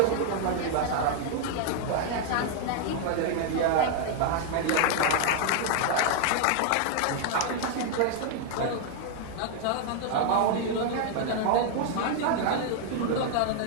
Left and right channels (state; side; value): different; both; correlation 0.00